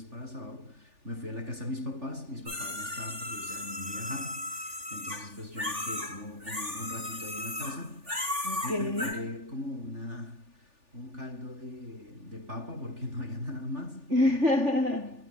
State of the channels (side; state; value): left; late; 3.4 ms